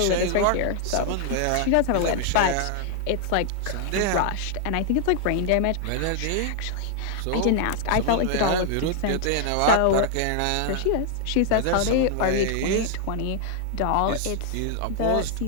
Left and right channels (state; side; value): different; both; correlation 0.00